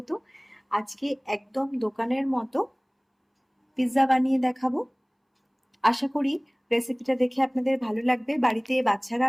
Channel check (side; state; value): both; identical; correlation 1.00